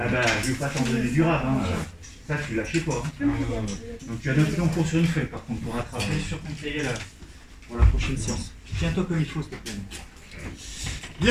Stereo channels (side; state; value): both; identical; correlation 1.00